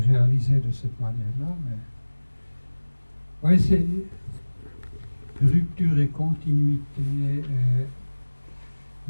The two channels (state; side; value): inverted; both; correlation -1.00